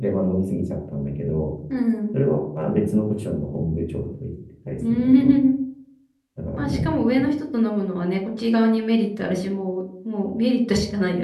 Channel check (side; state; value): both; identical; correlation 1.00